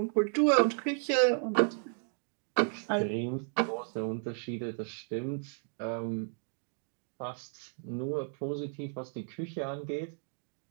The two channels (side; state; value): left; silent; 55 dB below the other